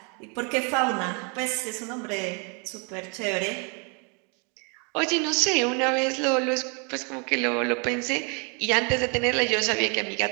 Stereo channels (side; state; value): left; quieter; 34.9 dB